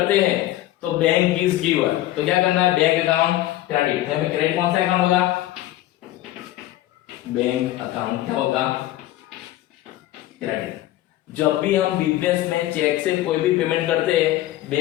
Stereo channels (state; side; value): quieter; right; 15.1 dB